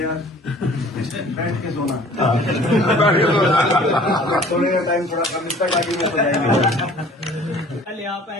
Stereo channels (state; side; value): normal; both; correlation 0.50